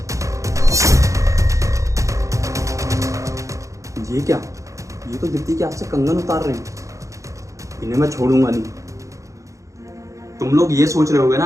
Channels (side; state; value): left; late; 0.15 ms